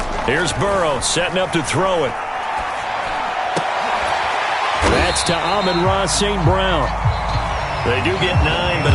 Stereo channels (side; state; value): both; identical; correlation 1.00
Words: Here's Burrow setting up to throw it. That's to Amon-Ra St. Brown. They do get 9, but